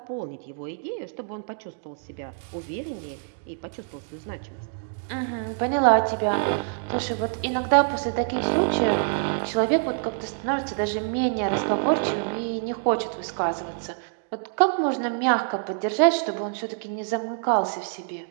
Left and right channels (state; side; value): silent; left; digital silence